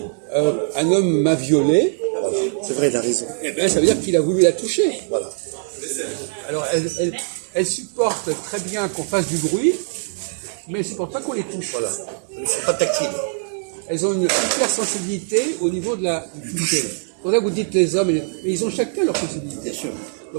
un homme m'a violé, C'est vrai, il a raison. eh ben, ça veut dire qu'il a voulu la toucher. Voilà. Alors, elles supportent très bien qu'on fasse du bruit, mais elles ne supportent pas qu'on les touche. Voilà. Elles ne sont pas tactiles. Elles ont une hypersensibilité au niveau de du toucher. C'est pour ça que vous dites les hommes, mais ils ont chacun leur sensibilité. Bien sûr.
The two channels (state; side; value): silent; left; digital silence